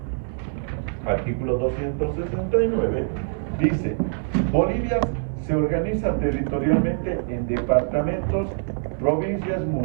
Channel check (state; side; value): silent; left; digital silence